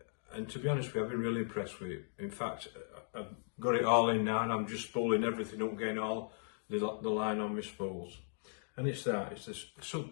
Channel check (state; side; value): silent; right; digital silence